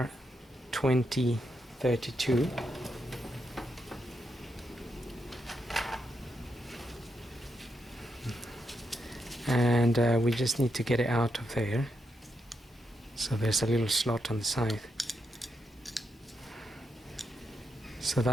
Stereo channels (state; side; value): normal; both; correlation 0.82